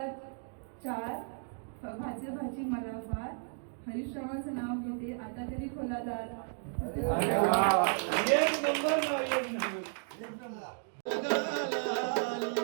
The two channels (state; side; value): silent; left; 55 dB below the other